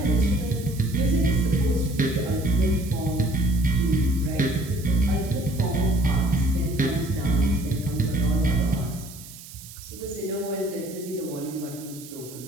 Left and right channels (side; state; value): right; noise; hiss, 16 dB below the sound